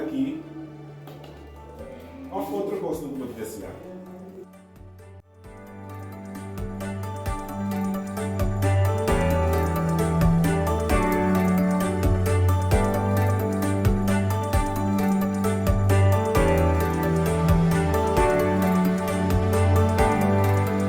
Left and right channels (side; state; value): both; identical; correlation 1.00